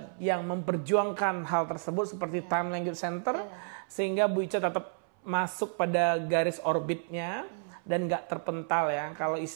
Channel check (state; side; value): silent; left; 57 dB below the other